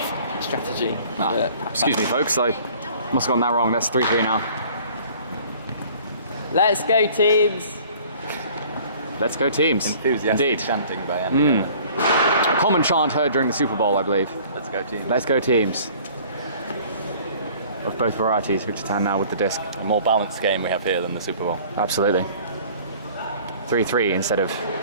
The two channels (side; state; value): both; inverted; correlation -0.51